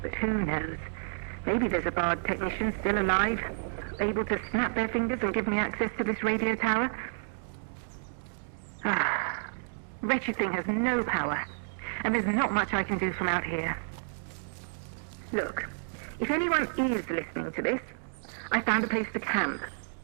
But who knows? Maybe there's a Bard technician still alive, able to snap their fingers and give me access to this radio tower. Wretched thing has no power, and there's not much I can do from out here. Look, if anyone is listening to this, I found a place to camp.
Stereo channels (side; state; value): left; silent; digital silence